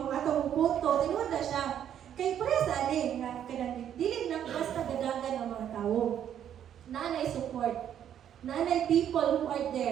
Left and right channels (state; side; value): quieter; left; 9.8 dB